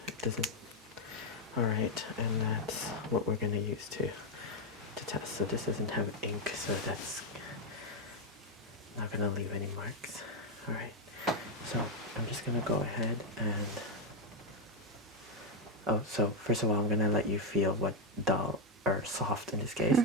it doesn't... Alright, and that's what we're going to use to test. So this doesn't have ink, so that's not going to leave any marks. Alright, so I'm just going to go ahead and... Oh, so first of all, I'm going to let you feel what dull or soft in this case.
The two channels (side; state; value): both; normal; correlation 0.02